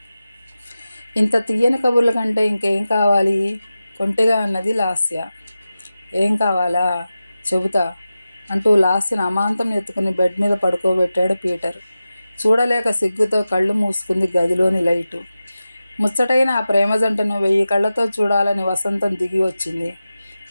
ఇంత తీయని కబుర్ల కంటే ఇంకేం కావాలి? కొంటెగా అన్నది లాస్య. ఏం కావాలా? చెబుతా అంటూ లాస్యను అమాంతం ఎత్తుకుని బెడ్ మీద పడుకోబెట్టాడు పీటర్. చూడలేక సిగ్గుతో కళ్ళు మూసుకుంది గదిలోని లైటు. ముచ్చటైన ఆ ప్రేమ జంటను 1000 కళ్ళతో చూడాలని వసంతం దిగి వచ్చింది.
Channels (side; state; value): both; inverted; correlation -0.94